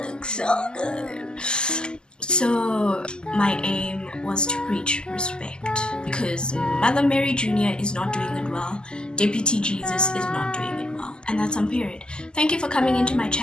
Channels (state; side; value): late; right; 0.046 ms